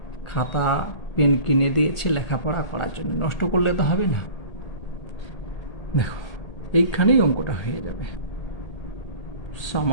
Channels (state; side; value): late; right; 1.8 ms